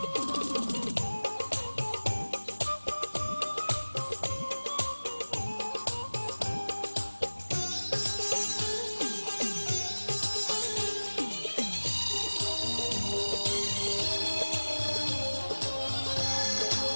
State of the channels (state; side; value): inverted; both; correlation -1.00